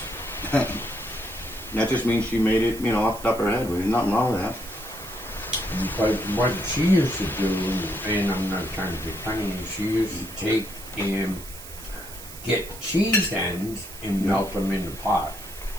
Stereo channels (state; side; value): noise; right; hiss, 14 dB below the sound